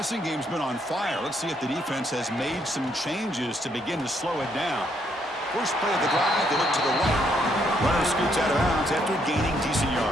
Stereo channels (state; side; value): normal; both; correlation 0.72